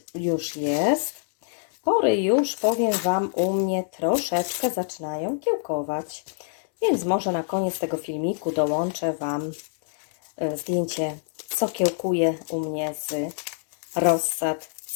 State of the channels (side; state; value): right; silent; digital silence